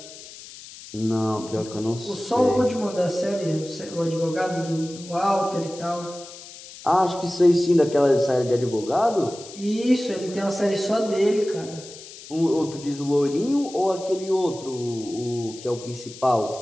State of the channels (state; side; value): noise; left; hiss, 16 dB below the sound